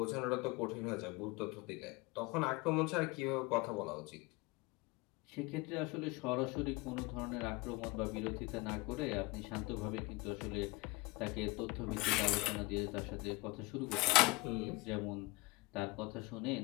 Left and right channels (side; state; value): right; quieter; 24.3 dB